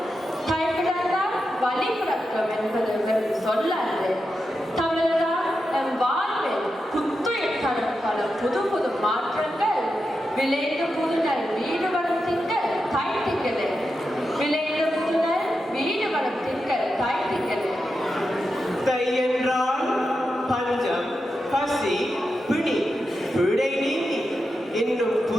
தாய் பிறந்தால் வலி பிறக்கும் என்பது வெறும் சொல்லன்று. தமிழ்தான் நம் வாழ்வில் புத்துயிர் தரும் பல புது புது மாற்றங்கள் விளைந்த புதுநல் வீடு வரும் திங்கள் தாய் திங்களே. விளைந்த புதுநல் வீடு வரும் திங்கள் தாய் திங்களே. தை என்றால் பஞ்சம் பசி பிணி பிழை நீங்கி இன்னும்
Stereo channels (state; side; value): normal; both; correlation 0.88